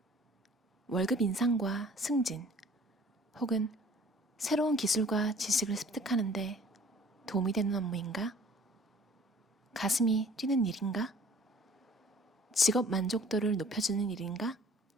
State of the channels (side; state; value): both; normal; correlation 0.52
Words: 월급 인상과 승진, 혹은 새로운 기술과 지식을 습득하는데 도움이 되는 업무인가? 가슴이 뛰는 일인가? 직업 만족도를 높여주는 일인가?